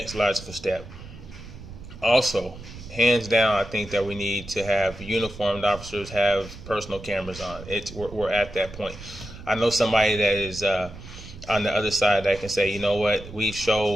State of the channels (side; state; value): right; noise; rumble, 15 dB below the sound